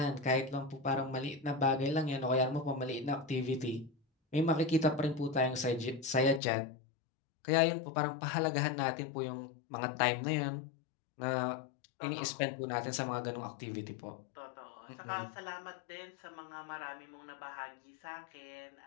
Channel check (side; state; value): right; drops out; at 6.4 s